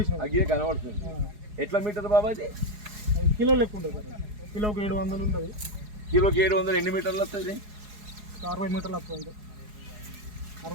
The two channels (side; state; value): left; late; 4.8 ms